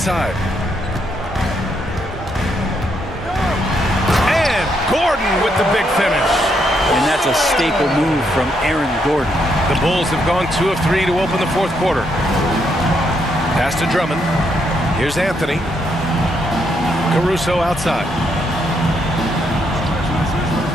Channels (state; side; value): normal; both; correlation 0.76